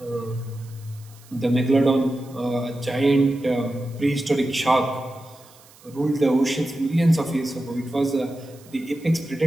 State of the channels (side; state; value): right; noise; hiss, 25 dB below the sound